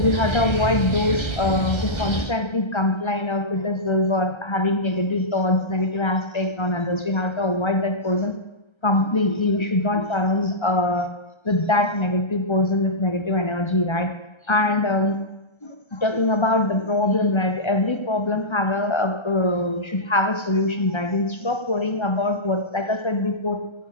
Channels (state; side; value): late; right; 1.3 ms